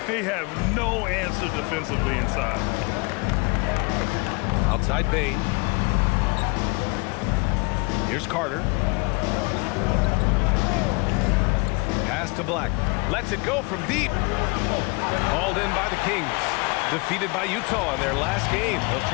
They have no answer defensively inside. Outside Bane. Here's Carter. Pass to Black. Lets it go from deep. Hauled in by the Kings. Defeated by Utah in their last game. They'll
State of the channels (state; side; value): quieter; right; 28.9 dB